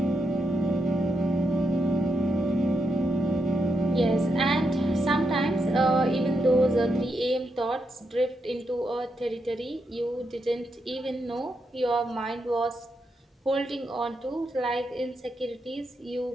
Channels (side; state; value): both; normal; correlation 0.82